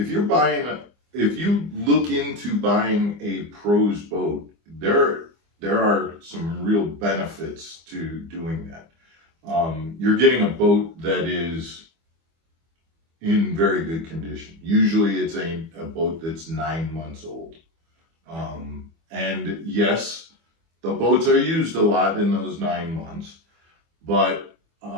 you look into buying a pro's boat, there are some real benefits to doing that. You're getting a boat that is in very good condition. Usually it's a boat that's 9 months old. And yes, the boats are used a lot in those 9 months, but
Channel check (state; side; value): late; left; 24 ms